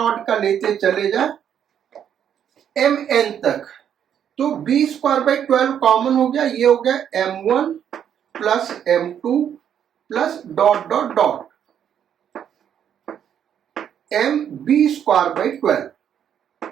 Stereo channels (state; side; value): quieter; left; 9.1 dB